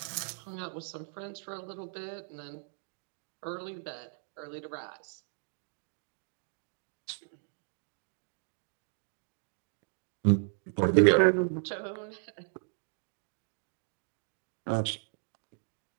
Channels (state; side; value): silent; left; digital silence